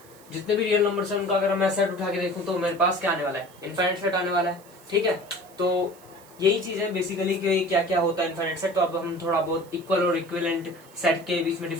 जितने भी रियल नंबर्स हैं उनका अगर मैं सेट उठा के देखूं तो मेरे पास क्या आने वाला है? इनफाइनाइट सेट आने वाला है, ठीक है। तो यही चीज है बेसिकली कि क्या क्या होता है इनफाइनाइट सेट। तो अब हम थोड़ा बहुत इक्वल और इक्विवेलेंट सेट के बीच में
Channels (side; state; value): right; noise; hiss, 25 dB below the sound